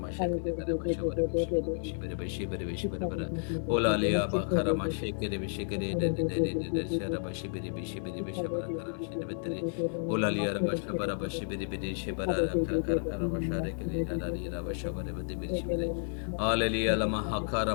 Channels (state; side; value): silent; right; digital silence